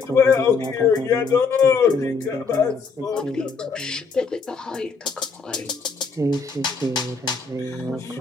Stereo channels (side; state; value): right; quieter; 4.9 dB